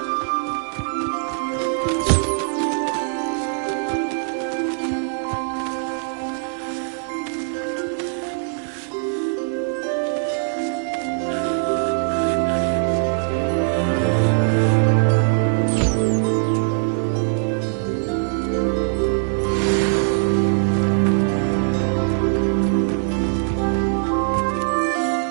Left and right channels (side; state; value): left; silent; digital silence